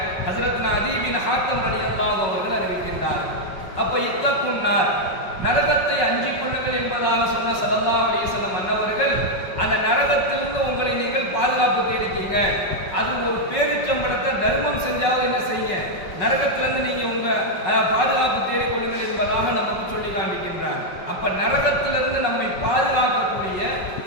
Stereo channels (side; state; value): right; late; 5.4 ms